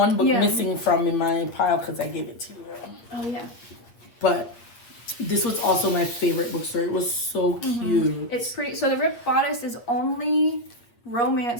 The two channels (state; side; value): late; right; 8.5 ms